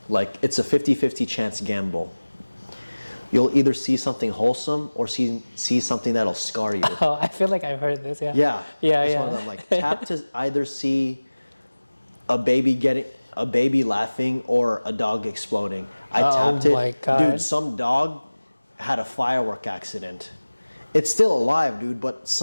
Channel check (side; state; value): both; inverted; correlation -1.00